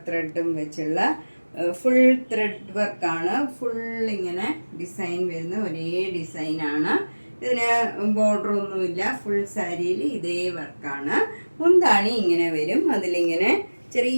ത്രെഡും വെച്ചുള്ള ഫുൾ ത്രെഡ് വർക്കാണ്. ഫുൾ ഇങ്ങനെ ഡിസൈൻ വരുന്ന ഒരേ ഡിസൈനാണ്. ഇതിന് ബോർഡർ ഒന്നുമില്ല. ഫുൾ സാരിയിൽ ഇതേ വർക്കാണ്. മുന്താണി ഇങ്ങനെ വരും. അതിലിങ്ങനെ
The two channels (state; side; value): inverted; both; correlation -1.00